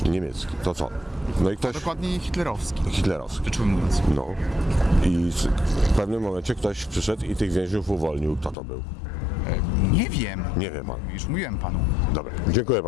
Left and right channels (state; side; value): drops out; right; at 8.6 s